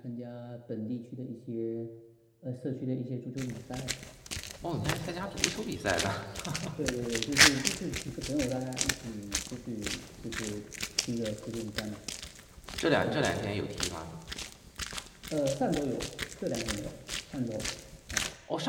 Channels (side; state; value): both; identical; correlation 1.00